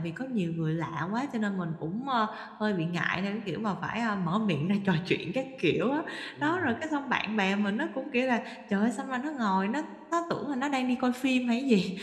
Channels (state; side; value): identical; both; correlation 1.00